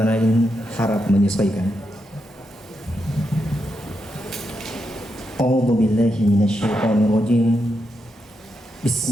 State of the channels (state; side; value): normal; both; correlation 0.84